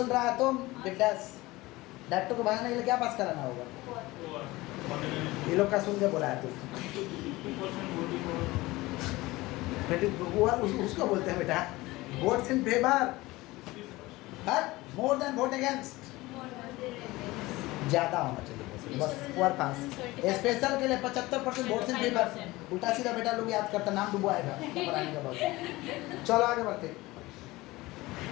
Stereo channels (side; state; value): right; quieter; 20.0 dB